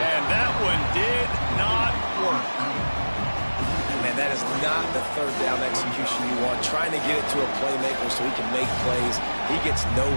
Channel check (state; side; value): inverted; both; correlation -1.00